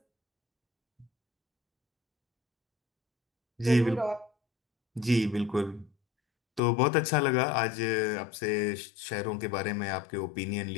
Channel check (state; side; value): drops out; right; at 6.6 s